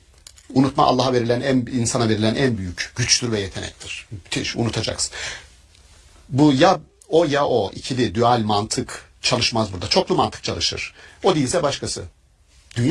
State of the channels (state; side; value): identical; both; correlation 1.00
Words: Unutma Allah'a verilen, insana verilen en büyük güçtür ve yetenektir. Müthiş, unutacaksın. Bu ya o ikili dual mantık çalışmaz burada. Çoklu mantık çalışır. O değilse başkası.